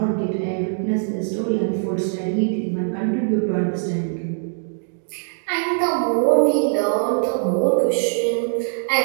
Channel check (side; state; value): left; silent; digital silence